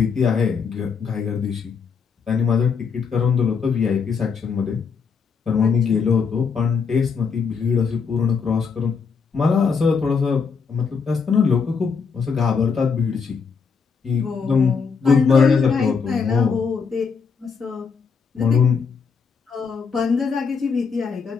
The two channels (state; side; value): quieter; right; 5.6 dB